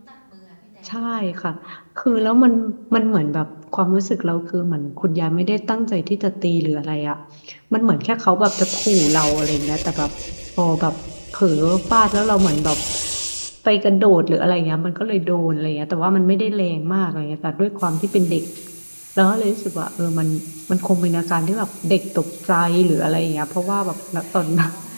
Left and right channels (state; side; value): inverted; both; correlation -1.00